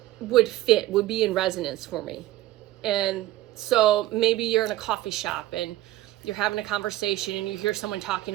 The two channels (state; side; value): quieter; left; 15.7 dB